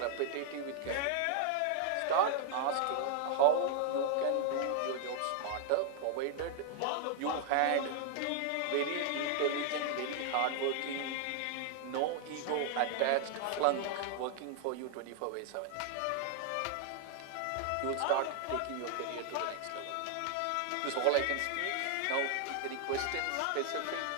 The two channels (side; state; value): both; different; correlation 0.00